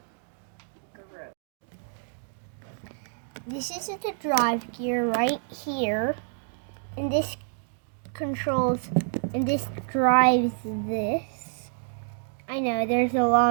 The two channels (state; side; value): silent; left; digital silence